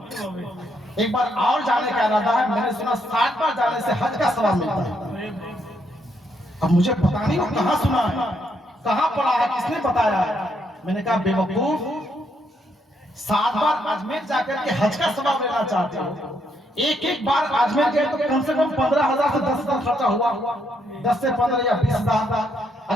ایک بار اور جانے کا ارادہ ہے۔ میں نے سنا 60 بار جانے سے حج کا ثواب ملتا ہے۔ اب مجھے پتا نہیں وہ کہاں سنا ہے، کہاں پڑھا ہے، کس نے بتایا ہے۔ میں نے کہا بے وقوف، 7 بار اجمیر جا کر کے حج کا ثواب لینا چاہتے ہو، ایک بار اجمیر گئے تو کم سے کم 15,000 سے 10,000 خرچہ ہوا، 10 سے 15 یا 20,000۔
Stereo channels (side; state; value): both; normal; correlation 0.75